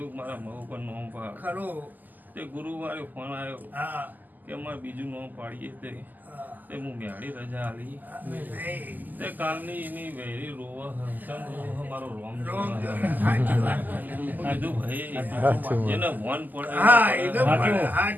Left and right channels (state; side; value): late; left; 0.084 ms